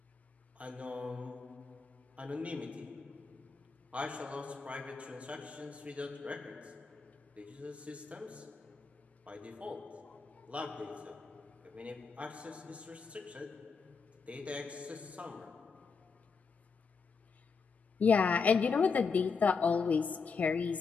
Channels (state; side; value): quieter; right; 5.1 dB